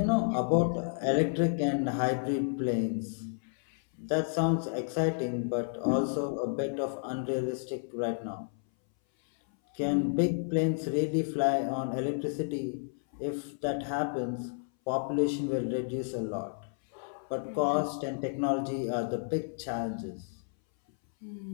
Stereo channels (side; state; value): right; silent; 57 dB below the other